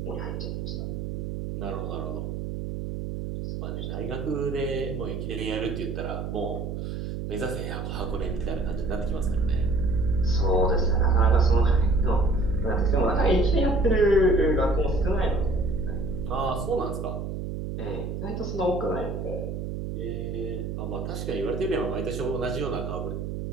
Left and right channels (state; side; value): noise; right; hum, 5 dB below the sound